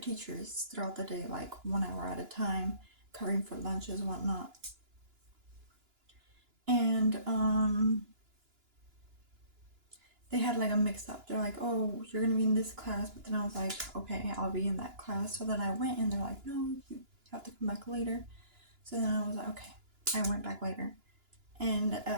throughout the day, like 1 hour at a time, covering for lunches, whatnot. And they had like a mix up. They're like, oh, you're gonna be in this class, but then I was like, okay, I'll be in that class. So then I went and they're like, no, you have to come back later. So then I was like, okay. I went back later. And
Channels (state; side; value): late; left; 2.9 ms